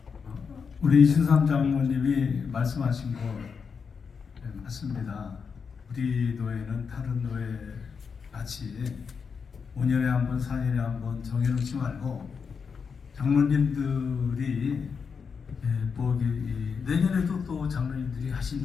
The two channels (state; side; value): quieter; right; 5.9 dB